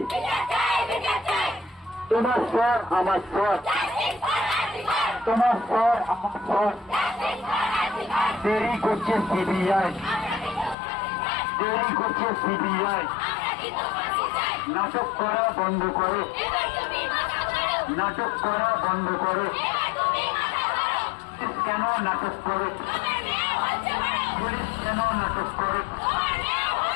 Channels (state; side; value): drops out; right; at 10.8 s